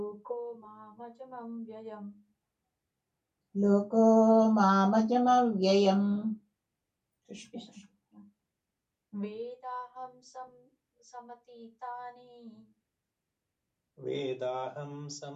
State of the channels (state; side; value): identical; both; correlation 1.00